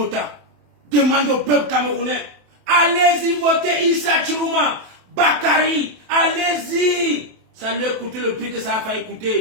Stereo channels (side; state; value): left; late; 27 ms